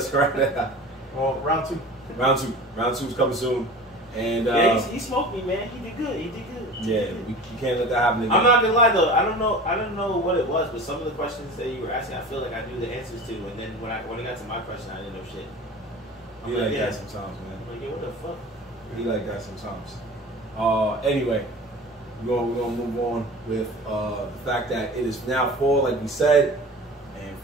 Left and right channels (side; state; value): both; normal; correlation 0.37